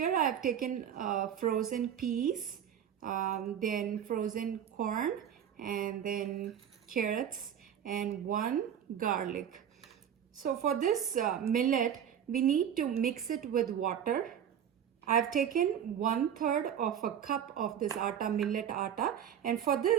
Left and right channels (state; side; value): quieter; left; 9.2 dB